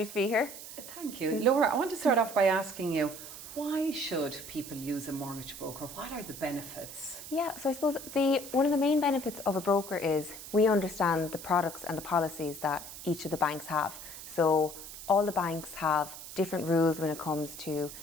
to be here. Thank you. Laura, I want to start off by asking you, why should people use a mortgage broker? What are the benefits? Yeah, so I suppose one of the main benefits of a broker is we understand the products and the policies that each of the banks have. So all the banks have different rules when it comes to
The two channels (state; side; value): noise; right; hiss, 12 dB below the sound